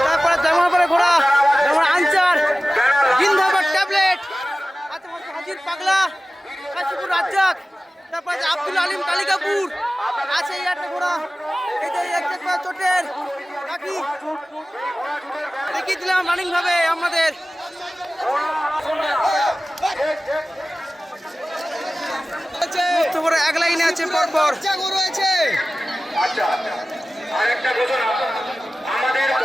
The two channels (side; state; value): both; normal; correlation 0.97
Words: তারপরে জামাপাড়া ঘোড়া, যেমন আনচার, গিন্ধাবার ট্যাবলেট, হাজির পাগলা, কাশীপুর রাজ্জাক, তারপর আছে আব্দুল আলিম কালিকাপুর আছে, এই একটা ঘোড়া, এটা চোটের লাকি দেখিয়ে দিলাম রানিং ভাবে আমাদের। এক লাইনে আছে পরপর